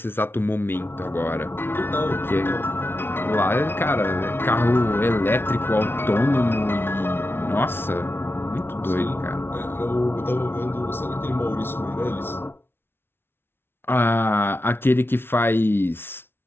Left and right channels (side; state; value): right; late; 0.11 ms